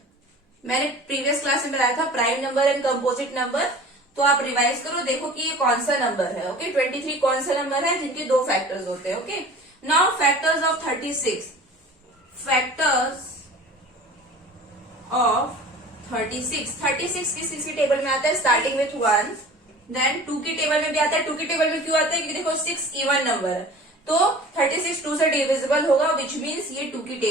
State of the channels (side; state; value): both; normal; correlation 0.42